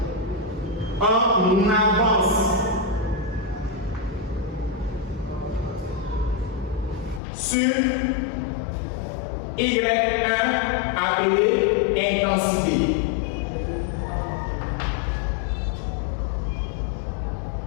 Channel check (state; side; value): drops out; right; at 7.2 s